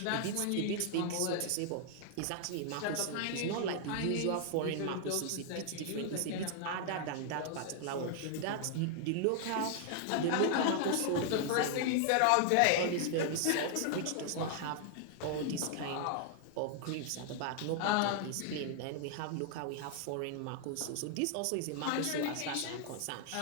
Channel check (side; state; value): both; different; correlation 0.00